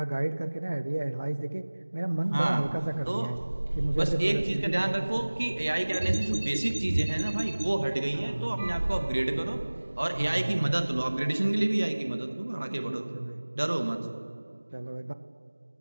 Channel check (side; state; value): both; inverted; correlation -1.00